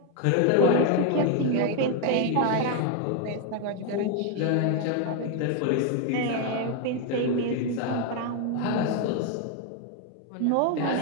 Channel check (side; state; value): both; different; correlation 0.01